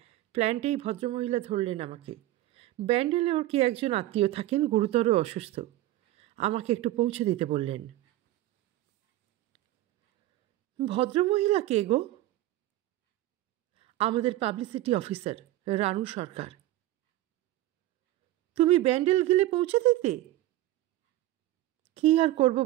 প্ল্যান্টেই ভদ্রমহিলা ধরলেন আমাকে। ব্যান্ডেলে ওর কি একজন আত্মীয় থাকেন, গুরুতর অসুস্থ। আমাকে একটু পৌঁছে দিতে বললেন। ভদ্রমহিলা কে গো? আমাদের পাবলিসিটি অফিসার রানু সরকার। তুমি ব্যান্ডেল গেলে পৌঁছে দিতে? কি আর করব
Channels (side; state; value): left; quieter; 15.5 dB